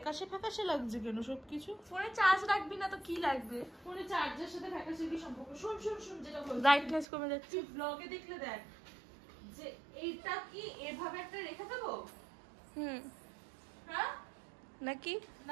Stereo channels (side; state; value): left; drops out; at 7.1 s